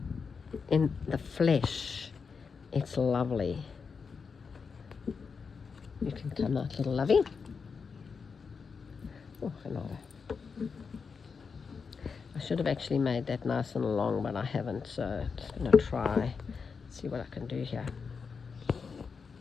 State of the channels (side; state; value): right; quieter; 5.5 dB